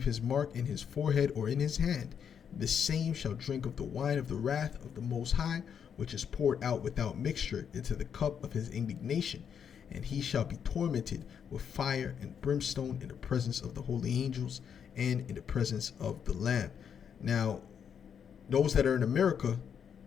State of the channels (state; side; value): quieter; right; 7.7 dB